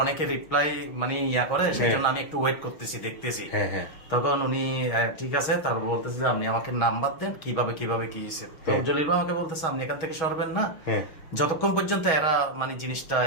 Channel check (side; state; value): right; late; 6.3 ms